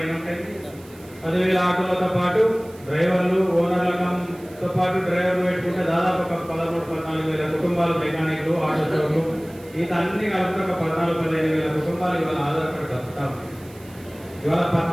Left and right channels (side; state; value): right; noise; hiss, 24 dB below the sound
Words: ఉంటాయి. 10,000 ఆటోలతో పాటు డ్రైవర్లు, ఓనర్లతో పాటు డ్రైవర్లు పెట్టుకుంటే దాదాపు ఒక 13-14,000 కుటుంబాలు, మెకానిక్లు, ఆటో షోలు, ఈత అన్ని కలిపి ఒక 14-15,000 కుటుంబాలు ఇవాళ ఆధారపడి బతుకుతా ఉన్నాయి. ఇవాళ